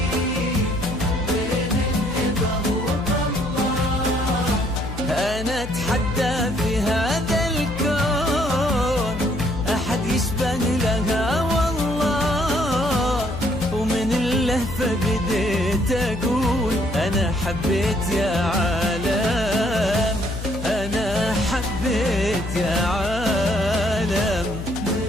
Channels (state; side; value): noise; left; hum, 8 dB below the sound